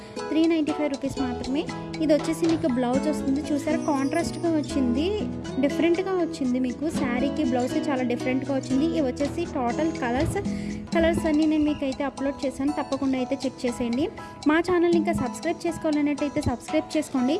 రూపీస్ మాత్రమే. ఇది వచ్చేసి మీకు బ్లౌజ్ వస్తుంది. చూసారా, కాంట్రాస్ట్గా వచ్చింది, డిఫరెంట్గా వచ్చింది. మీకు శారీకి బ్లౌజ్కి చాలా డిఫరెంట్గా వచ్చింది. ఇవి వచ్చేసి టోటల్ కలర్స్ అన్నీ నేను మీకు అయితే అప్లోడ్ చేశాను, తప్పకుండా అయితే చెక్ చేసేయండి. మా ఛానల్ని ఇంకా సబ్స్క్రైబ్ చేసుకోవాలన్నట్టయితే సబ్స్క్రైబ్ చేసుకోండి,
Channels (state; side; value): identical; both; correlation 1.00